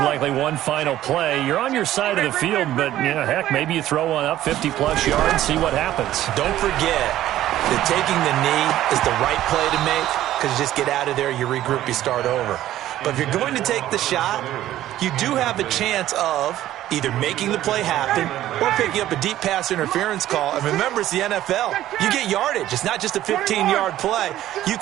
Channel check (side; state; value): left; quieter; 13.4 dB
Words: likely one final play. You're on your side of the field, but, heck, maybe you throw one up 50-plus yards, see what happens. Don't forget that taking the knee is the right play to make because you just get out of there, you regroup, you start over. But if you're going to take the shot, you do have a chance of either making the play happen or picking up a deep pass interference call. And remember, it's the NFL. You get yardage. It's not just a 15-yard play. You